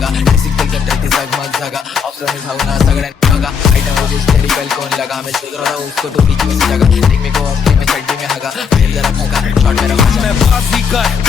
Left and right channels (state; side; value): quieter; right; 6.4 dB